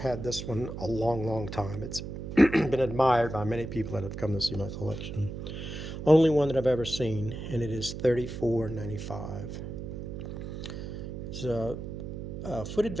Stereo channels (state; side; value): noise; right; hum, 7 dB below the sound